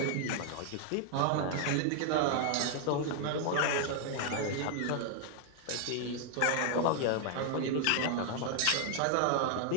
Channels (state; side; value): different; both; correlation 0.00